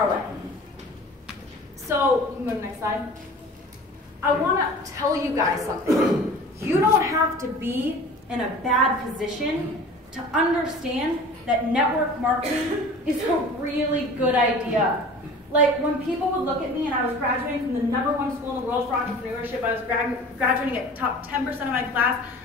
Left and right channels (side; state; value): both; normal; correlation 0.42